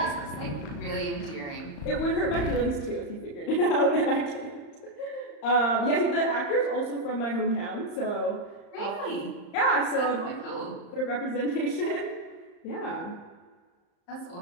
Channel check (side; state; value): right; late; 35 ms